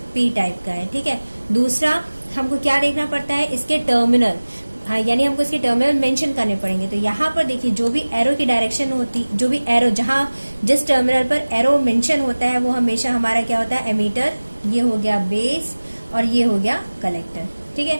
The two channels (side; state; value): both; inverted; correlation -1.00